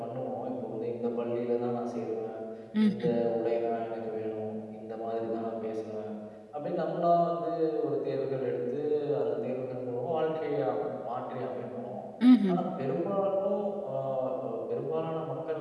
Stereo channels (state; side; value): identical; both; correlation 1.00